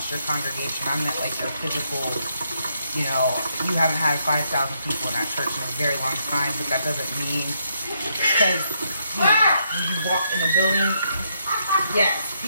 your congregation. I meant like your physical, you know, you haven't had 5,000 people in that church in a very long time, but that doesn't mean, because, you know, when you walk in a building, yes,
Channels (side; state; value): both; inverted; correlation -0.77